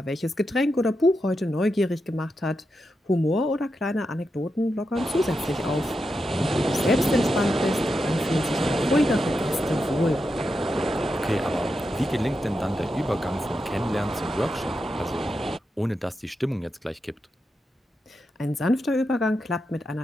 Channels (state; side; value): normal; both; correlation 0.87